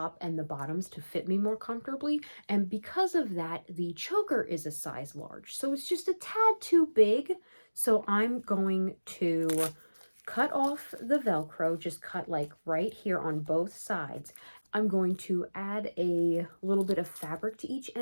and the bottoms to fit me more comfortably. And because of that, the choker is a size large. So it's just a tad too big. So I'm going to cut off the Velcro, just cut like right here on both sides. I'm going to add a little bit of fabric to each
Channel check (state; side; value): inverted; both; correlation -1.00